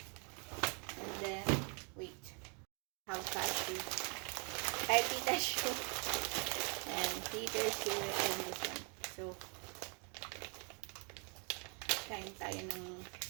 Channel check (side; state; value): left; quieter; 35.9 dB